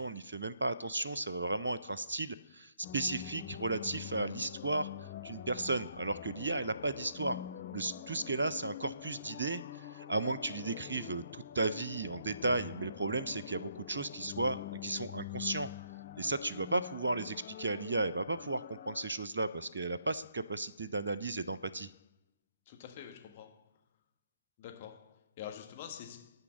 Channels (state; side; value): inverted; both; correlation -0.72